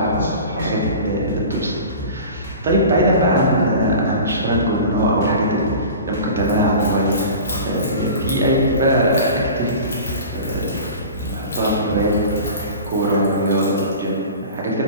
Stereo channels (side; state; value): both; inverted; correlation -0.37